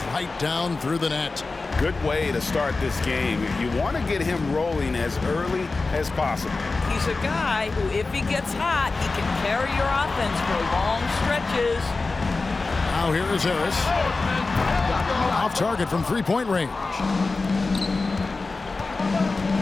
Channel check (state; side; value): quieter; right; 3.7 dB